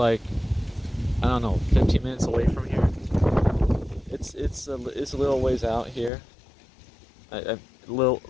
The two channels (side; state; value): right; drops out; at 6.1 s